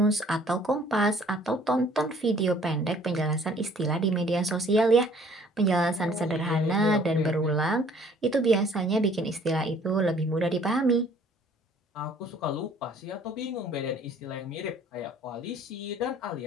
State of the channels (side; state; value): both; normal; correlation 0.57